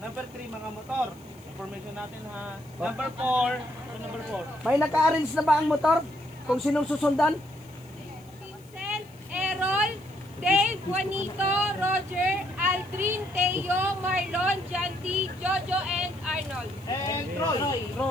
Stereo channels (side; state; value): left; noise; hiss, 28 dB below the sound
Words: 3, mga motor. Information natin ha. Number 4, number 4. May naka-arrange na ba ang motor? Kung sinong susundan? Vincent, Errol, Dave, Juanito, Roger, Aldrin, Teo, Marlon, Janty, Jojo, and Arnold. And Troy.